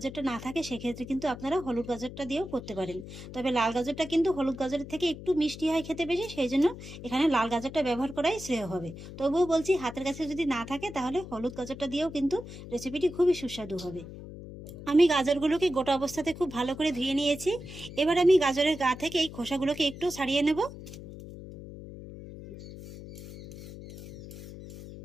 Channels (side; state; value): left; noise; hum, 13 dB below the sound